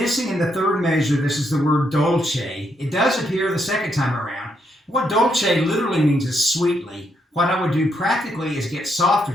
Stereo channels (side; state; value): both; normal; correlation 0.77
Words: in the third measure, this is the word dolce. It does appear the second time around. What dolce literally means is sweetly. What I would do practically is get softer